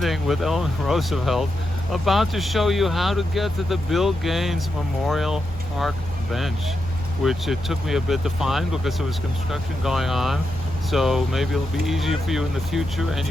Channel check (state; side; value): normal; both; correlation 0.86